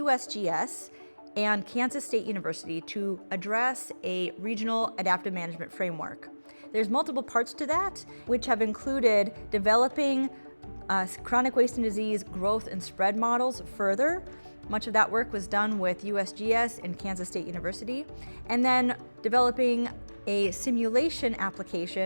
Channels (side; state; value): both; inverted; correlation -1.00